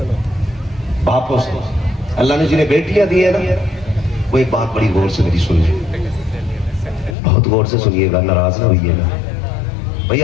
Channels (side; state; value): right; drops out; at 7.2 s